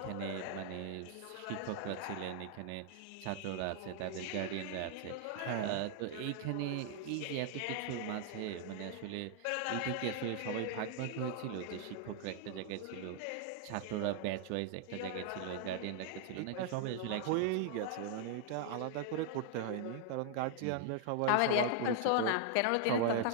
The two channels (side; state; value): both; different; correlation 0.00